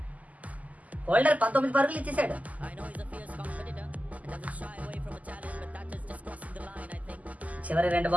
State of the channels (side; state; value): left; late; 0.075 ms